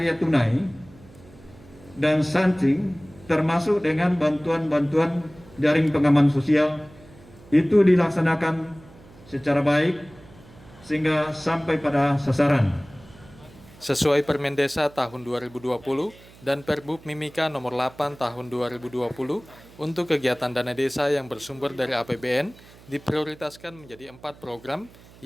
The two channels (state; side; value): noise; right; hum, 23 dB below the sound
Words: tunai dan stunting, termasuk dengan bantuan-bantuan jaring pengaman sosial, itu dilaksanakan secara baik sehingga sampai pada sasaran. Sesuai Permen Desa tahun 2020 dan Perbub Mimika nomor 8 tahun 2020, untuk kegiatan dana desa yang bersumber dari APBN diprioritaskan menjadi 4 program,